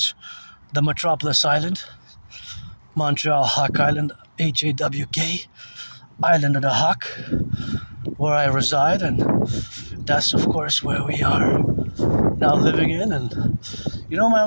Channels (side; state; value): both; inverted; correlation -1.00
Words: the metropolis island, Montreal Hawk Island, HAWK, Island of the Hawk, where I reside, and that's, of course, where we are now living in. And you know, my